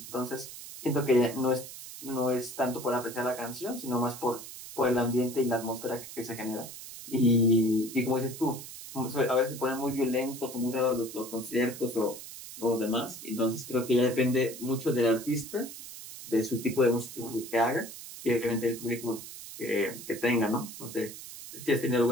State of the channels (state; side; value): noise; right; hiss, 12 dB below the sound